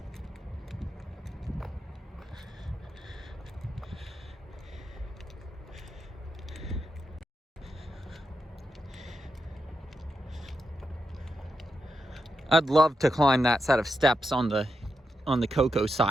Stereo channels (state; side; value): normal; both; correlation 0.86